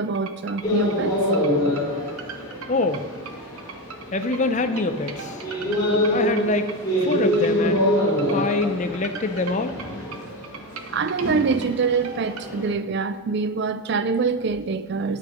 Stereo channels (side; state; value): both; normal; correlation 0.15